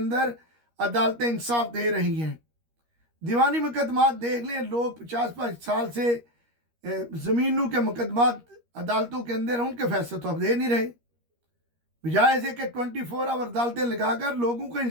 अदालतें इंसाफ दे रही हैं, दीवानी मुकदमात देख लें, लोग 50-50 साल से ज़मीनों के मुकदमात अदालतों के अंदर, उनके फैसले तो अब दे नहीं रहे। बजाय से कि 24 आवर अदालतें लगाकर लोगों को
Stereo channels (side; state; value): left; late; 13 ms